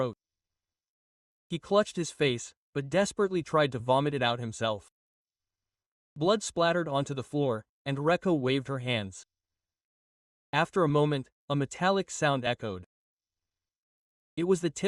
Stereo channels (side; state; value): both; identical; correlation 1.00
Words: He clutched his face, but desperately tried to vomit it out himself. Blood splattered onto the floor, and Reko waved her hands. After a moment, a metallic sound echoed. It was the